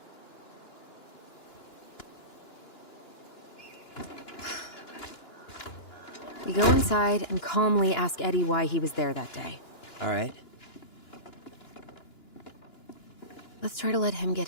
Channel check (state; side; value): late; right; 2.9 ms